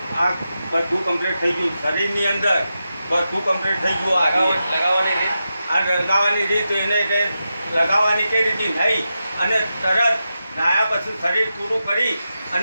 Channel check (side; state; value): both; inverted; correlation -0.89